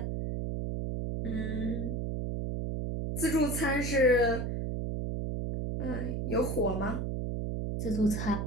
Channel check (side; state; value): right; noise; hum, 2 dB below the sound